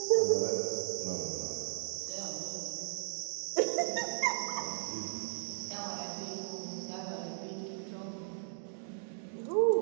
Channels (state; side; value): silent; left; digital silence